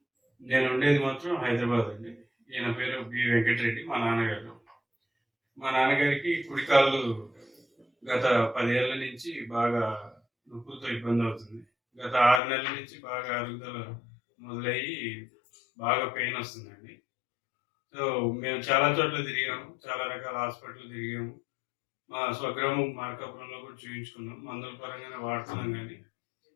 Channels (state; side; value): drops out; right; at 12.4 s